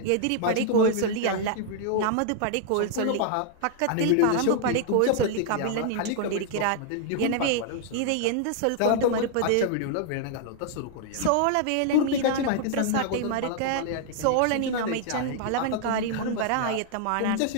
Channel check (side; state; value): both; different; correlation 0.00